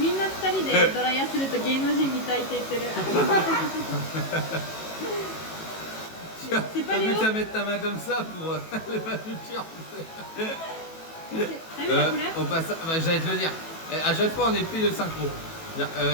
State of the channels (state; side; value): late; right; 18 ms